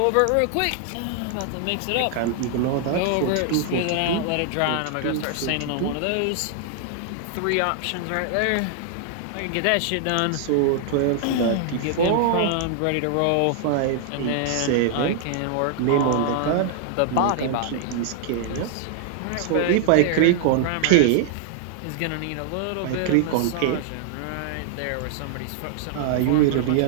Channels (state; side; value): different; both; correlation -0.01